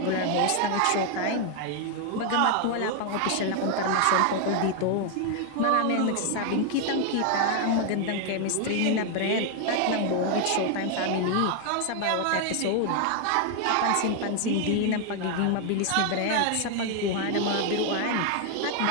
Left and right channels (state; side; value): different; both; correlation 0.00